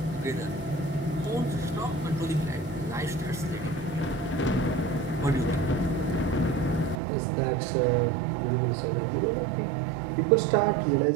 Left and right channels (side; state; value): left; drops out; at 7.0 s